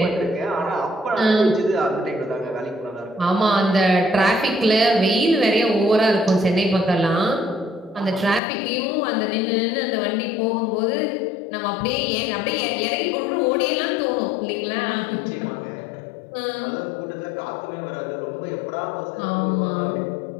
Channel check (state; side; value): drops out; right; at 8.4 s